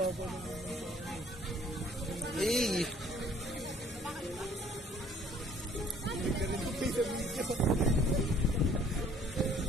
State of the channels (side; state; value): both; normal; correlation 0.56